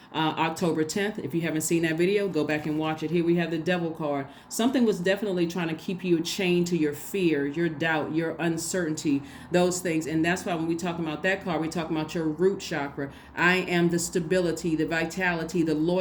October 10th. If you haven't seen that video, go back and watch it. Here we have the devil card. Something was definitely trying to keep you chained to your fear, your doubt, your uncertainty, those things. And that's why when we talk about that card, we talk about your root chakra. I am the stability, the vitality, the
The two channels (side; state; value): both; identical; correlation 1.00